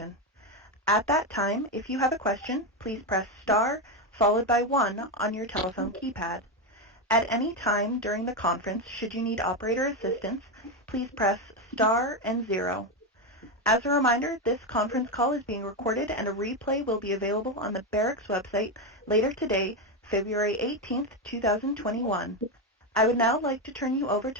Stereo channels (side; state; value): both; normal; correlation 0.10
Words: At that time, if you have a question, please press star followed by 1 on your telephone keypad. At any time during the conference, should you need operator assistance, please press star and 0. As a reminder, this conference call is being recorded and a replay will be available on the Barrick's website later today, February 18th, 2021. I would now like to turn you over